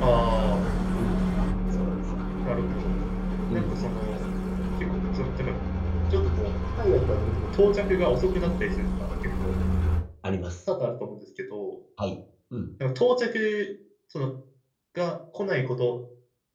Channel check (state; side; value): identical; both; correlation 1.00